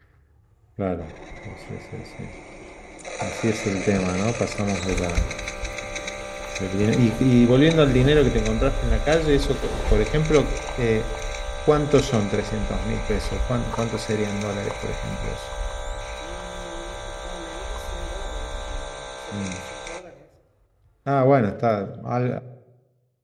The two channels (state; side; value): identical; both; correlation 1.00